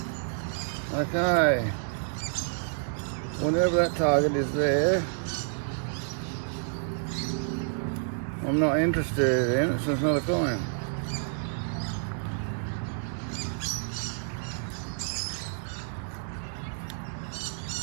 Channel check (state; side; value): silent; left; digital silence